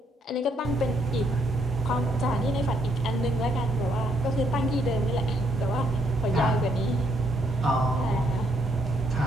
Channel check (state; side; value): normal; both; correlation 0.72